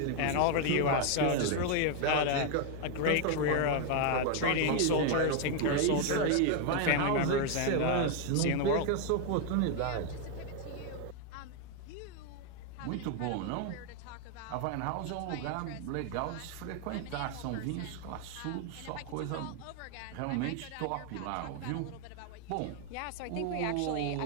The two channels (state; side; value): different; both; correlation 0.01